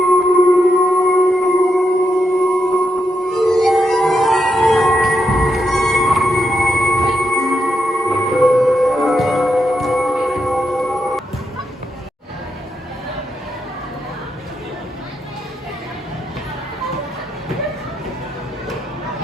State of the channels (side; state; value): both; normal; correlation 0.83